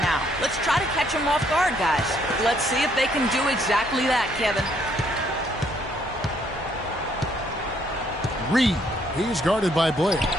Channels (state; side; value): normal; both; correlation 0.68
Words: now. Let's try to catch them off guard, guys. Let's see if they can do exactly that, Kevin. Reed. He's guarded by Blair.